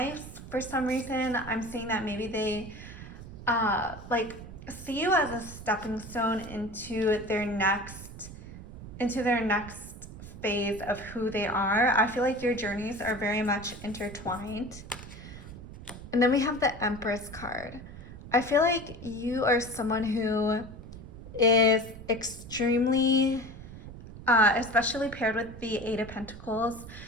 For some reason, I'm seeing that maybe they like see you as a stepping stone into their next phase of who they are. I feel like your journeys are very much intertwined. And then we have the Empress card. I feel like you are someone who is extremely, especially paired with the Eight of Pentacles,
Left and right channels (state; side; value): noise; right; rumble, 13 dB below the sound